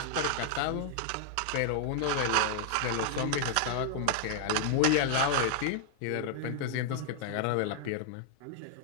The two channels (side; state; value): both; different; correlation -0.01